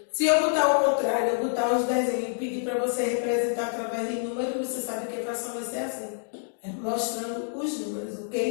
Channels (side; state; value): right; silent; digital silence